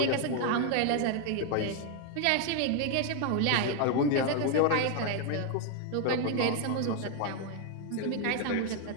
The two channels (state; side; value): different; both; correlation 0.00